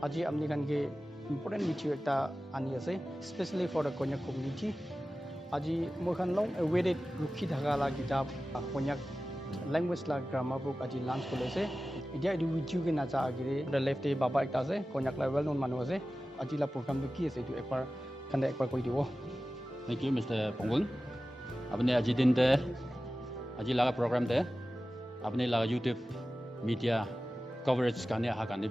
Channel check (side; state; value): both; normal; correlation 0.95